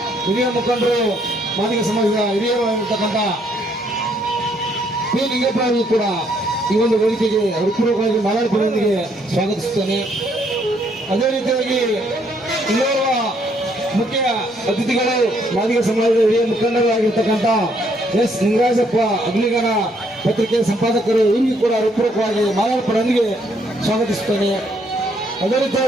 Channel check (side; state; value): both; normal; correlation 0.69